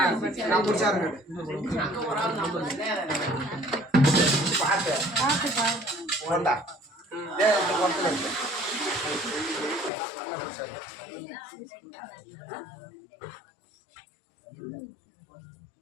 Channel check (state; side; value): drops out; right; at 9.9 s